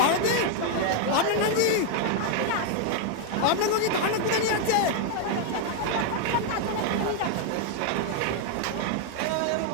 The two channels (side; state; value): both; different; correlation 0.00